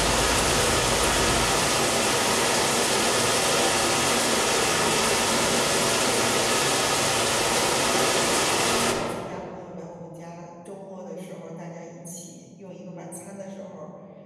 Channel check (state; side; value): identical; both; correlation 1.00